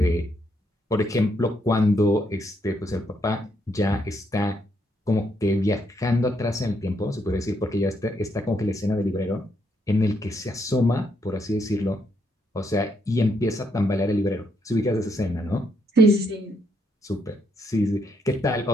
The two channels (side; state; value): both; normal; correlation 0.76